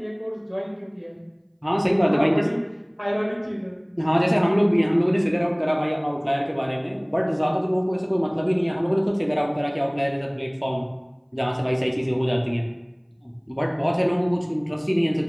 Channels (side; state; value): both; identical; correlation 1.00